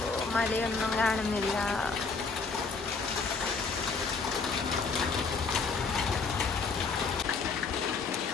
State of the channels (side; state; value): right; quieter; 4.6 dB